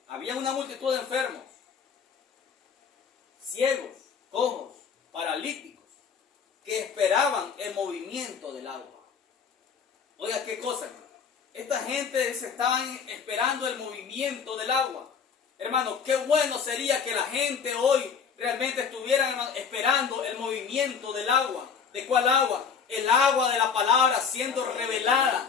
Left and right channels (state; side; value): quieter; right; 6.4 dB